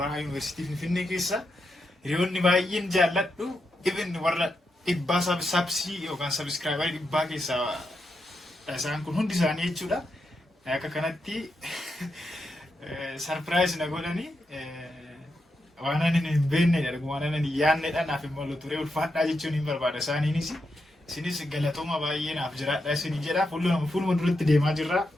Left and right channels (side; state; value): both; normal; correlation 0.85